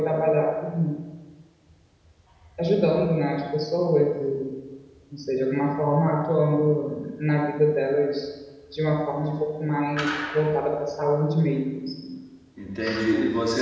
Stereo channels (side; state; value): both; identical; correlation 1.00